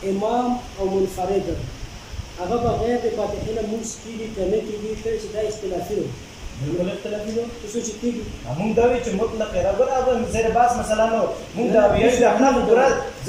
امام او منفرد هغه بغیر د فاتحې نه مونځ کېږي که نه کېږي کله چې دا اختلافي دی بالکل اختلافي دی څه چې کېږي مونږ دا وایو چې مطلق برابر زیر باس مثلا نو مونږ دا وایو چې احناف ګوره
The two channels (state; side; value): identical; both; correlation 1.00